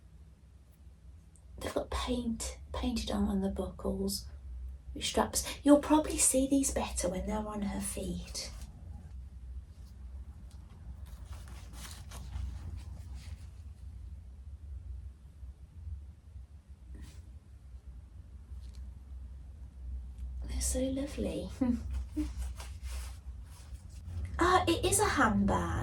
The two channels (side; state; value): both; identical; correlation 1.00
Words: They've got painted on the buckles with straps. You'll probably see these better when they're on her feet. So lovely. It is a